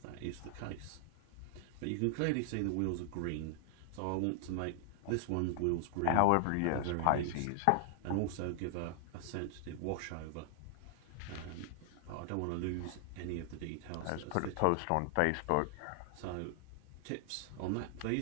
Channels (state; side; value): different; both; correlation 0.00